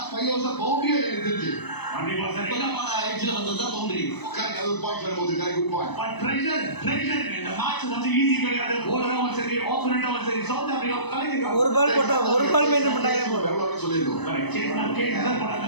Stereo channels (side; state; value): right; late; 0.99 ms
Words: 5 ஓவர்ஸ் பவுண்டரியே எனக்கு தெரிஞ்சு எட்ஜ்ல வந்ததா பவுண்டரி. ஒரு பாயிண்ட் வரும்போது குட் பாயிண்ட். பட் ப்ரெஷர் இந்த மேட்ச் வந்து ஈஸி கிடையாது. போலரும் சரி ஆப்போனன்ட்டும் சரி சவுத் ஆப்பிரிக்கா கலக்கிங்க. ஒரு பால் போட்டா ஒரு பால் மெயின்டைன் பண்ணாலே போதும். எவ்வளவு சொல்லிருக்கோம். கேட்னா போறாங்க.